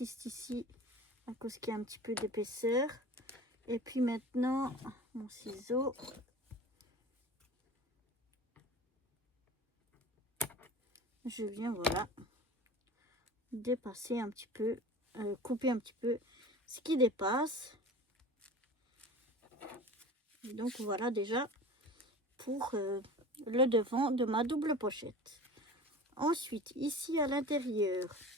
ici à cause qu'il y a un petit peu d'épaisseur. Et puis maintenant, mon ciseau. Je viens, voilà, dépasser un petit peu, couper un petit peu ce qui dépasse. Et donc voilà déjà pour le devant de ma double pochette. Ensuite, ici à l'intérieur,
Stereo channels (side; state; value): both; normal; correlation 0.36